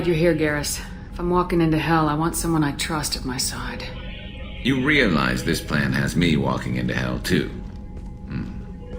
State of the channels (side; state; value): both; identical; correlation 1.00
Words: you're here, Garrus. If I'm walking into hell, I want someone I trust at my side. You realize this plan has me walking into hell, too.